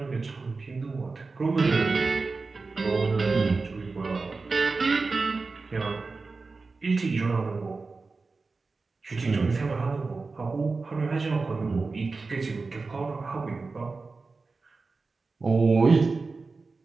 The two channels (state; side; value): quieter; left; 4.0 dB